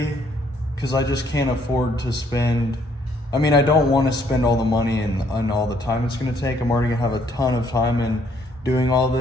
because I just can't afford to spend, I mean, I don't want to spend all the money and all the time it's gonna take. I'm already gonna have a ton of time in doing all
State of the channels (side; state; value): both; normal; correlation 0.67